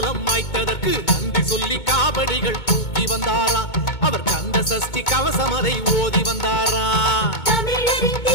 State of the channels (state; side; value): late; right; 2.2 ms